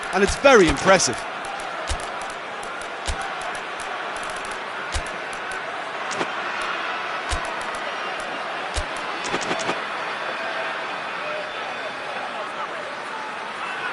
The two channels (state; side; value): identical; both; correlation 1.00